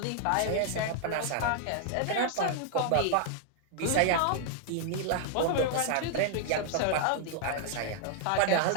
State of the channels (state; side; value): different; both; correlation 0.00